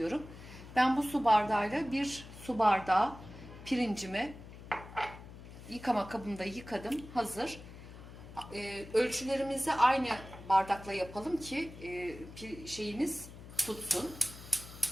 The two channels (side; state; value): left; noise; hum, 15 dB below the sound